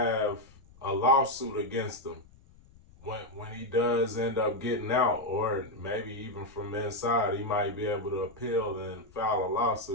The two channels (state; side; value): noise; left; rumble, 25 dB below the sound